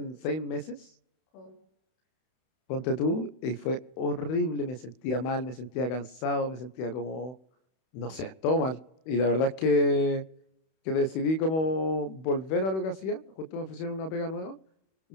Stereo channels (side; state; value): right; late; 31 ms